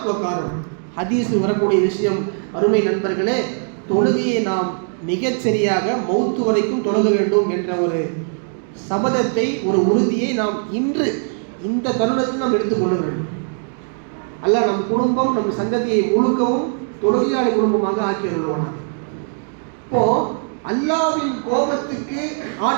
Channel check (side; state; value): left; silent; 56 dB below the other